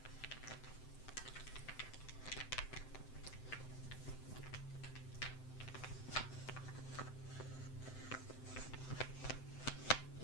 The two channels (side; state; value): right; late; 7.8 ms